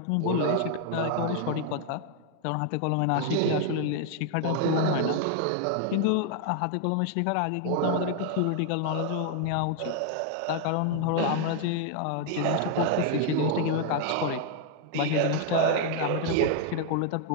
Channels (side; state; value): both; different; correlation 0.00